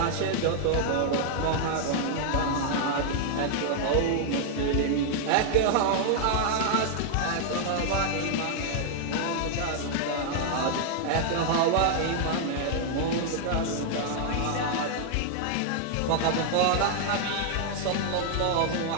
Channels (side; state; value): both; different; correlation 0.00